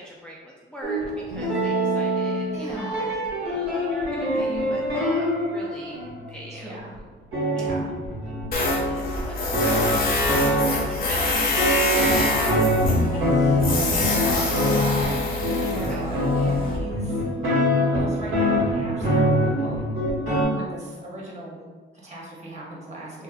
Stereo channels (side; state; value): both; normal; correlation 0.34